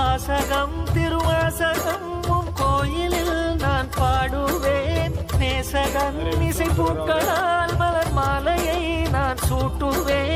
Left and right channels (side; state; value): both; identical; correlation 1.00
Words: திருவாசகம் உன் கோயிலில் நான் பாடுவேன் நேசகன் இசை பூக்களால் மலர் மாலையை நான்